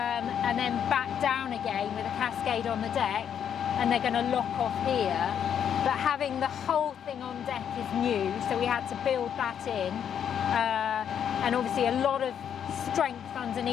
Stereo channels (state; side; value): quieter; right; 8.7 dB